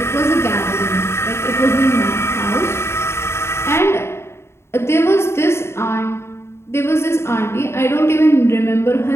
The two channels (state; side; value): late; right; 0.12 ms